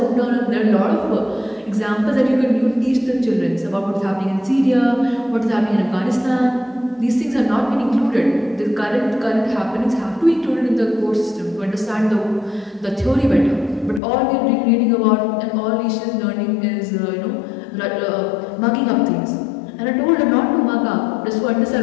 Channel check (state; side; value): drops out; right; at 14.0 s